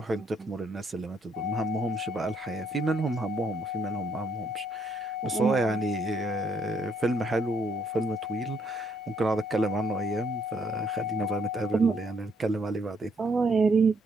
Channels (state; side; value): normal; both; correlation 0.70